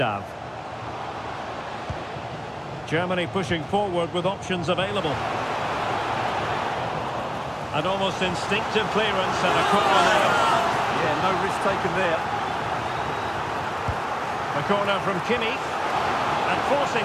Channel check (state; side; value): identical; both; correlation 1.00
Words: Germany pushing forward with options available. An almost instinctive clearance and a corner there. Yeah, no risk taken there. A corner from Kimmich. And